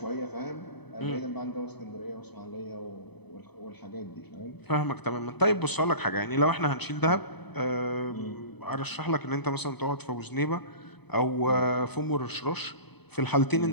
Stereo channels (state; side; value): late; right; 0.98 ms